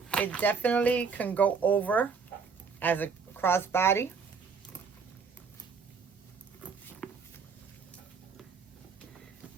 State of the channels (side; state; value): left; quieter; 5.5 dB